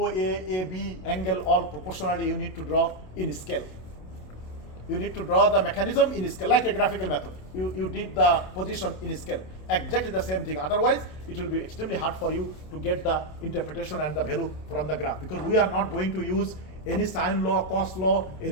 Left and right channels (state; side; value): late; right; 27 ms